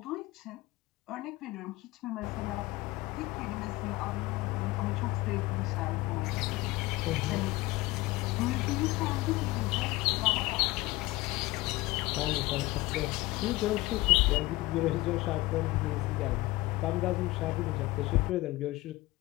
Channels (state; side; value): quieter; right; 19.9 dB